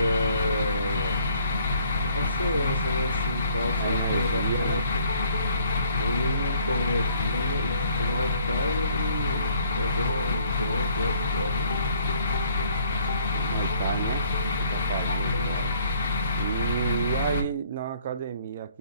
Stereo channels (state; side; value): inverted; both; correlation -0.61